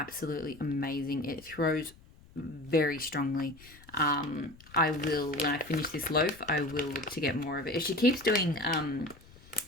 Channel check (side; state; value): left; noise; rumble, 23 dB below the sound